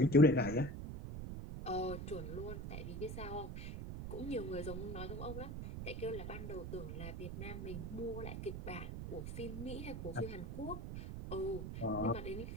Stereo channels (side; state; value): right; noise; rumble, 6 dB below the sound